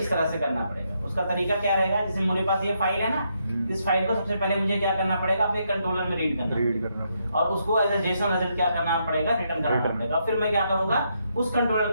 तरह से करना पड़ेगा। उसका तरीका क्या रहेगा, जैसे मेरे पास ये फाइल है ना, इस फाइल को सबसे पहले मुझे क्या करना पड़ेगा, अपने कंट्रोलर में रीड करना और उसको एज ए जेसन रिजल्ट क्या करना पड़ेगा, रिटर्न करना पड़ेगा। फिर मैं क्या करूंगा, उस कंट्रोलर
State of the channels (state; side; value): inverted; both; correlation -0.78